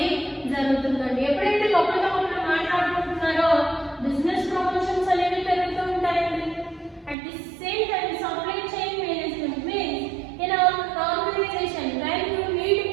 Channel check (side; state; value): left; drops out; at 7.2 s